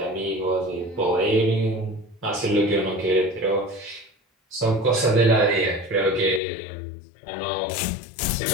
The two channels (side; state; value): right; drops out; at 6.4 s